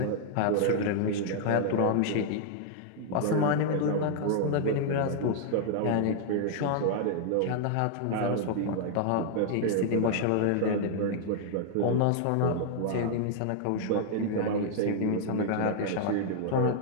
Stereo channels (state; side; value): different; both; correlation -0.01